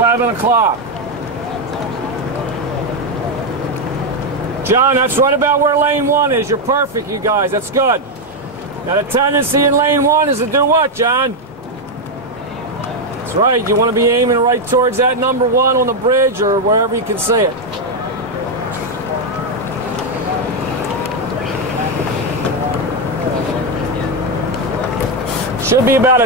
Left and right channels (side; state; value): both; normal; correlation 0.04